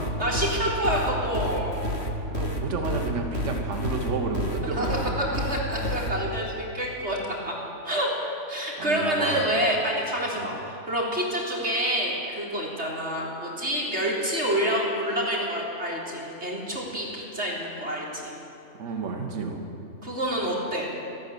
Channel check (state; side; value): late; left; 3.2 ms